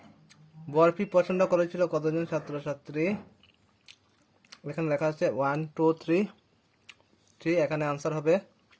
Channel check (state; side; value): identical; both; correlation 1.00